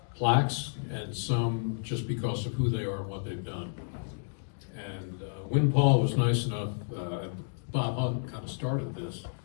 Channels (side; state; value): right; silent; digital silence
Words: plaques and some just because of who they are and what they've done. And Win Paul was nice enough, Bob Hunt kind of started this,